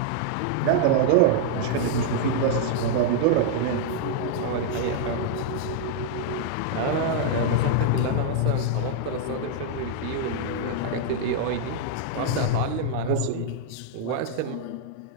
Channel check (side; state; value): both; different; correlation -0.01